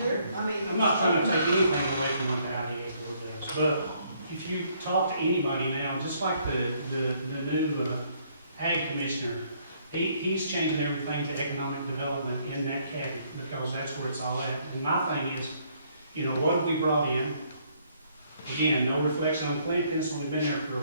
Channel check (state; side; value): inverted; both; correlation -0.67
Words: Sure, I mean. I'm not trying to take anything away from what the IDA board does, but if you talk to anybody now, just like the new ag commissioner, he's changing everything to economic development in that cabinet, because that's where it's all at. And my thing is, you know, what have we brought in? Again, no reflection on Clinton, it's only been there for a